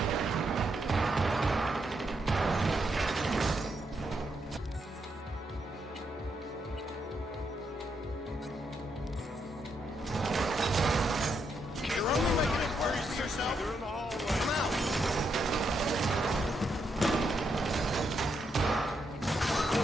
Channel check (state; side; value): normal; both; correlation 0.79